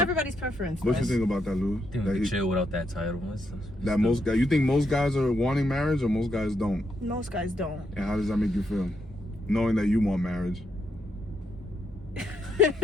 everybody's preference. What you Wes. think about that, Lou? I think That, we he- can chill without that title. that most guys, you think most guys are wanting marriage or most guys don't? Most guys don't. And how does that make you feel? Knowing that you want marriage.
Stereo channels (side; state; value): both; normal; correlation 0.77